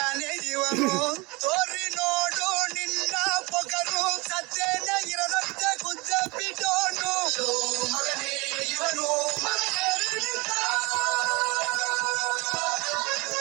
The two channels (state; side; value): quieter; left; 25.7 dB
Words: ಇವನು, ತೋರಿ ನೋಡು ನಿನ್ನ ಪೊಗರು. ಸತ್ತೇನೆ ಇರದಂತೆ ಗುದ್ದ ಬಿಡೋನು, ಮಗನೇ ಇವನು ಮಗನೇ